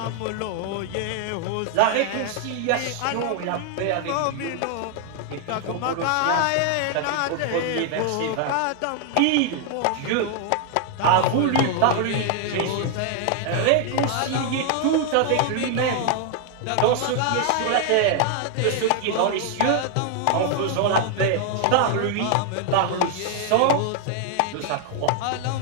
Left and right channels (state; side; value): different; both; correlation 0.00